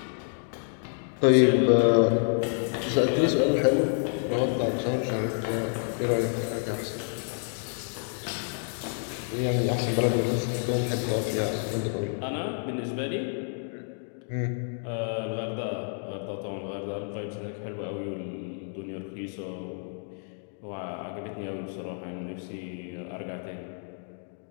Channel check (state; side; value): silent; right; 59 dB below the other